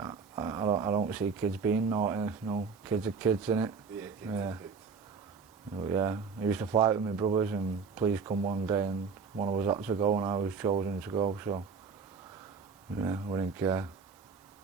don't see kids being naughty. No, kids are kids, innit? Yeah, kids Yeah. are kids. But yeah, I used to fight with my brothers, and police come one day and one of us had to go and I was chosen to go, so yeah, I didn't care.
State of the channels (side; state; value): left; quieter; 5.5 dB